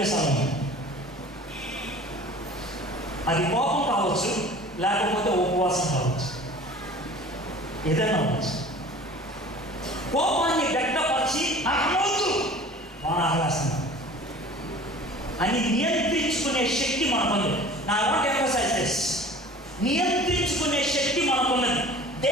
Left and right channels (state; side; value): normal; both; correlation 0.44